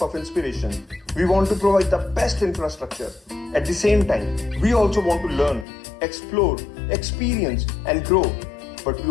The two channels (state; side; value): drops out; right; at 5.7 s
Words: of inspiration. We want to provide the best infrastructure. At the same time, we also want to learn, explore, experience, and grow. But